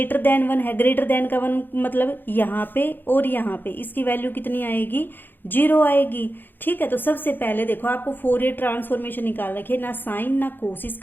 देन 1 है, ग्रेटर देन का 1 मतलब यहाँ पे और यहाँ पे, इसकी वैल्यू कितनी आएगी, 0 आएगी। ठीक है, तो सबसे पहले देखो आपको फोरियर ट्रांसफॉर्मेशन निकाल रखी है, ना साइन ना कोस,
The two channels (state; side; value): late; right; 0.093 ms